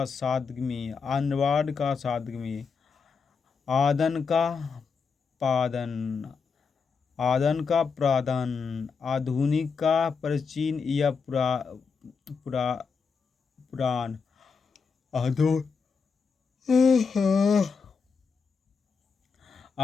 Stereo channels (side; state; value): right; quieter; 5.4 dB